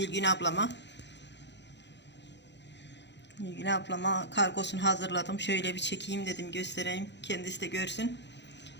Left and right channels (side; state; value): right; late; 0.51 ms